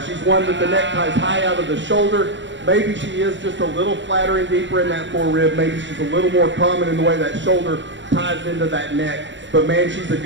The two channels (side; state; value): left; late; 0.53 ms